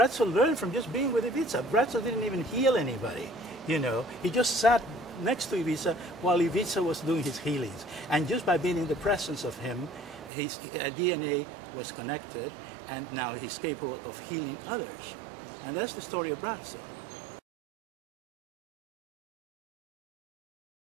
learned from just being with Ivica. Braco didn't even heal anybody, you know. He just sat next to Ivica while Ivica was doing his healings. And just by being in the presence of him, his DNA was connected, and now he's capable of healing others. And that's the story of Braco.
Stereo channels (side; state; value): left; drops out; at 10.3 s